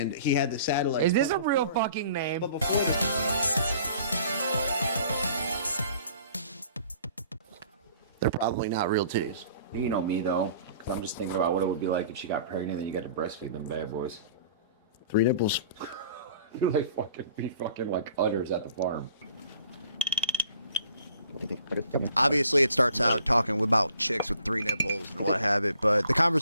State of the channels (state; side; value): inverted; both; correlation -0.53